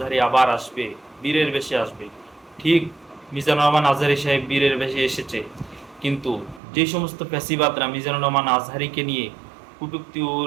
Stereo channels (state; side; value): drops out; left; at 6.6 s